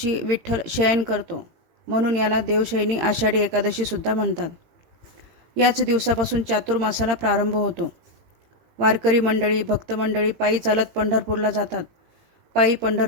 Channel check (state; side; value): late; left; 18 ms